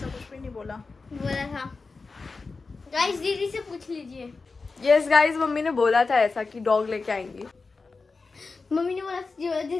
कुछ भी नहीं बोला। बोला था। गाइस दीदी से पूछ लीजिए। यस गाइस, मम्मी ने बोला था ऐसा कि डॉग लेके आएंगी। मम्मी ने बोला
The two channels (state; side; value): quieter; right; 4.1 dB